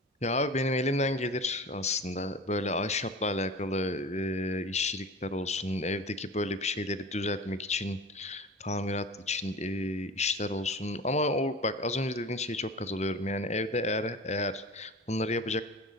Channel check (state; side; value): normal; both; correlation 0.36